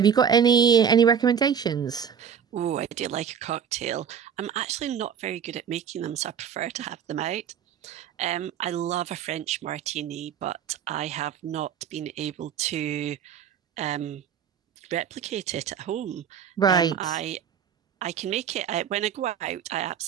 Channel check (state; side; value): quieter; left; 7.9 dB